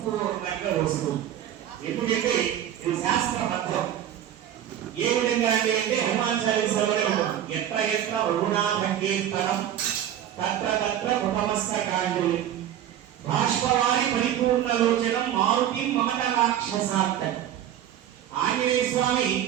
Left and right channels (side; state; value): left; quieter; 10.9 dB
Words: వస్తుంది. ఎందుకంటే ఇది శాస్త్రబద్ధం. ఏ విధంగా అంటే హనుమాన్ చాలీసాలోనే ఉంటుంది. ఎత్ర ఎత్ర రఘునాథ కీర్తనం తత్ర తత్ర కుటమస్తకాంజలి బాష్పవారి పరిపూర్ణ లోచనం మారుతి మమత రాక్షసాంత. ఆంజనేయ స్వామి